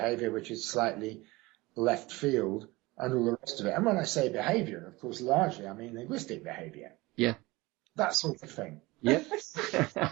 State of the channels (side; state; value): left; quieter; 21.7 dB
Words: which is slightly left field, and all the rest of it. And when I say behavior, of course, largely I mean linguistic behavior. Yeah. That sort of thing. Yeah.